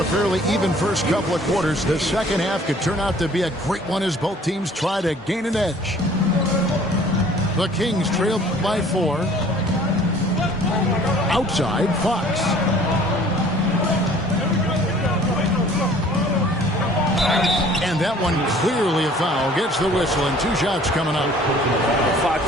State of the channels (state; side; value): normal; both; correlation 0.53